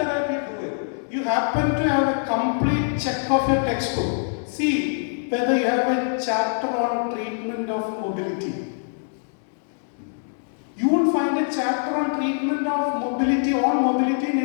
do it. You happen to have a complete check of your textbook. See whether you have a chapter on treatment of mobility. You won't find a chapter on treatment of mobility in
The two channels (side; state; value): right; silent; digital silence